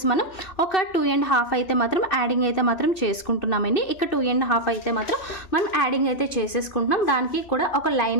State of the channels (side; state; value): right; late; 2.6 ms